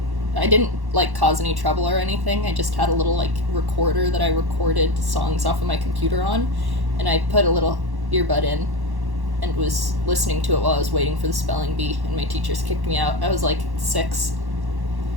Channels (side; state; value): left; late; 1.1 ms